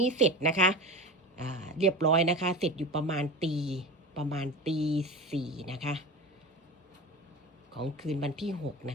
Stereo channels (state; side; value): normal; both; correlation 0.29